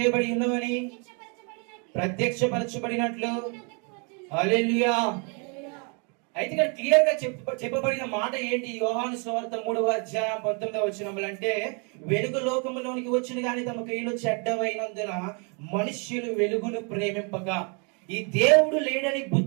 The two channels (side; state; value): left; quieter; 35.9 dB